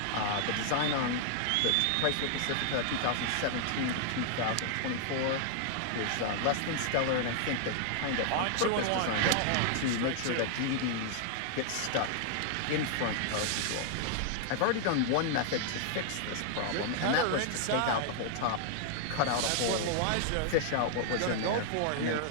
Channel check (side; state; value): both; different; correlation 0.00